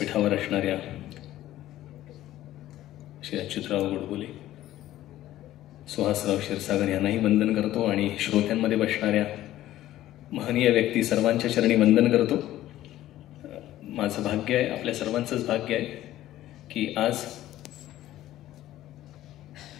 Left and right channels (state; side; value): quieter; right; 14.1 dB